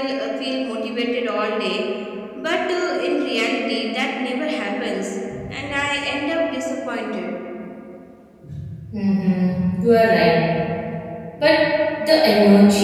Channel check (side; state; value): both; identical; correlation 1.00